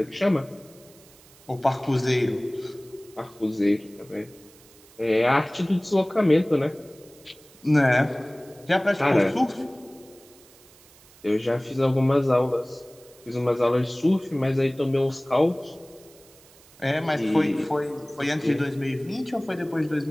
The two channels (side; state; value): right; noise; hiss, 25 dB below the sound